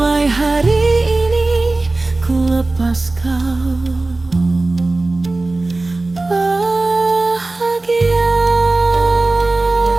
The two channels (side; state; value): left; quieter; 3.1 dB